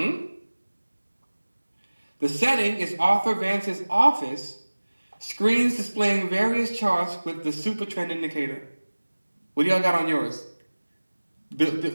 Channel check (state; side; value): inverted; both; correlation -1.00